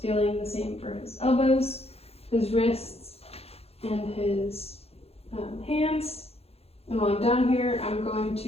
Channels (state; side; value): late; right; 0.29 ms